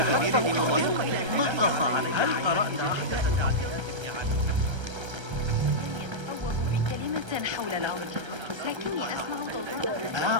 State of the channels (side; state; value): left; late; 1.3 ms